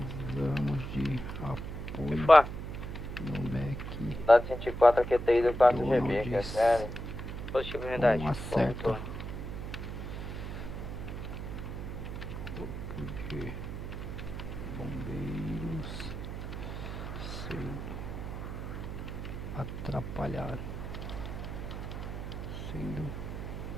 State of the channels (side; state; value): right; noise; hum, 6 dB below the sound